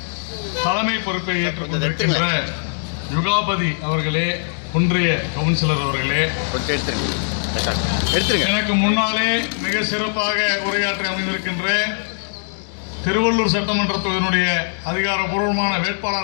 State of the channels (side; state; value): right; silent; digital silence